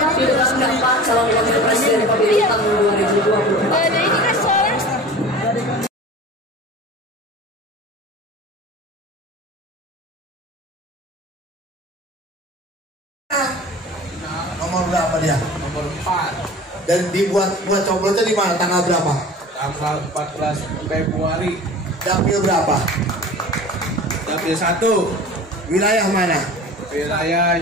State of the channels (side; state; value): both; normal; correlation 0.38